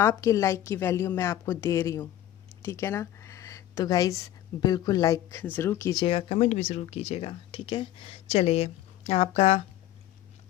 लाइक की वैल्यू मैं आपको दे रही हूँ, ठीक है ना। तो गाइज़ बिल्कुल लाइक ज़रूर कीजिएगा, कमेंट भी ज़रूर कीजिएगा, ठीक है। चलिए,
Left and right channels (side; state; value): right; quieter; 13.1 dB